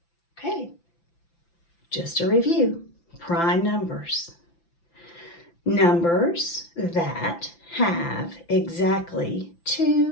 Okay. Just a review. Prime numbers. Numbers that have exactly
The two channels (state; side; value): late; right; 5.9 ms